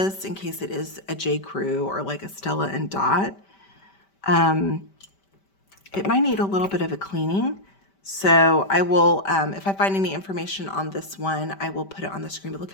in case it is a J.Crew or like a Stella and Dot. It might need a little bit of a cleaning. So I will, if I find any information on this one, I will put it on the screen. But look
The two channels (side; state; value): right; late; 5.1 ms